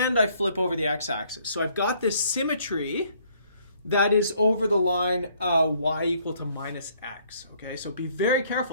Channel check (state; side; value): inverted; both; correlation -0.64